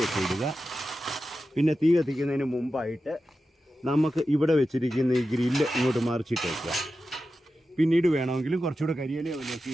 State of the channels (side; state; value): both; normal; correlation 0.92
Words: ഒക്കെ ഇടുക. പിന്നെ തീ കത്തിക്കുന്നതിന് മുമ്പായിട്ട് നമുക്ക് ഇവിടെ വെച്ചിരിക്കുന്ന ഈ ഗ്രില്ല് ഇങ്ങോട്ട് മറിച്ചിട്ട് വയ്ക്കുക. പിന്നീട് വേണമെങ്കിലും കുറച്ചുകൂടെ കരിയില ഒക്കെ